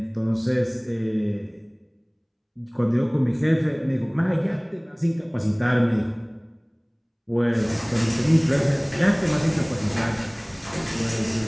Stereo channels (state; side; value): identical; both; correlation 1.00